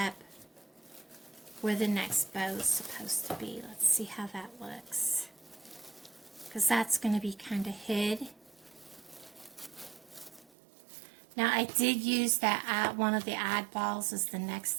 where the next bow is supposed to be. Let's see how that looks. Because that's going to be kind of hid. Now I did use that one of the oddballs as the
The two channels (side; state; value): left; drops out; at 10.5 s